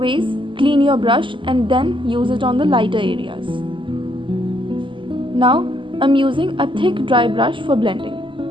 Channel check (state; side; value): late; left; 0.24 ms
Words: clean your brush and then use it on the lighter areas. Now, I'm using a thick dry brush for